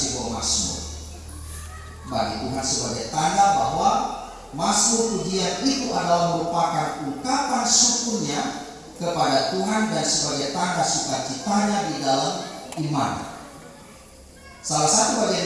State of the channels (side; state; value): both; identical; correlation 1.00